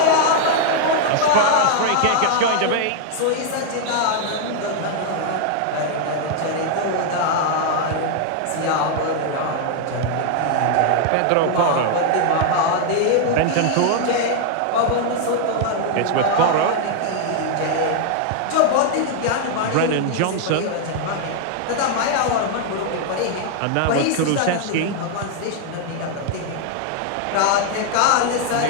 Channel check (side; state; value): both; different; correlation 0.00